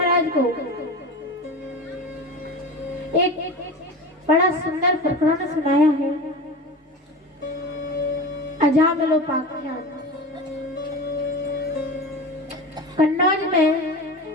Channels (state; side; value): normal; both; correlation 0.30